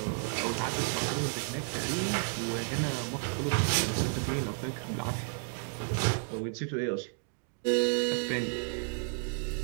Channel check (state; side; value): silent; left; 56 dB below the other